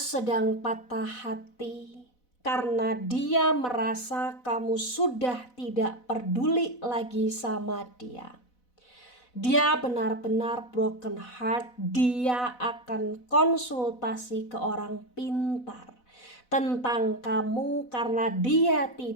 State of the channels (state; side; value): late; right; 4.0 ms